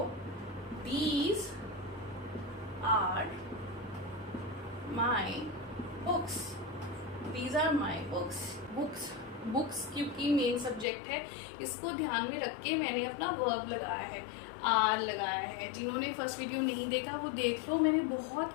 these are my books, these are my books. Books books क्योंकि मेन सब्जेक्ट है, इसको ध्यान में रख के मैंने अपना वर्ब लगाया है, आर लगाया है। जिन्होंने फर्स्ट वीडियो नहीं देखा वो देख लो, मैंने बहुत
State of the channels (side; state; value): right; drops out; at 10.9 s